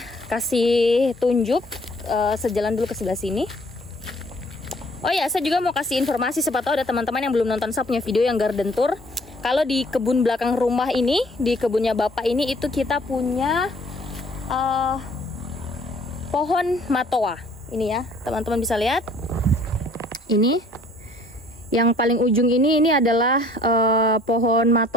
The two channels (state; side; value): normal; both; correlation 0.57